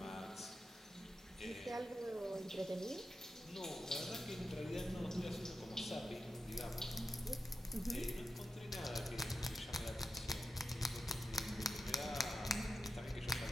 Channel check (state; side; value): normal; both; correlation 0.89